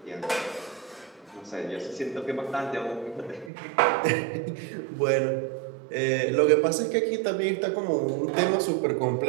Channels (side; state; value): left; drops out; at 3.5 s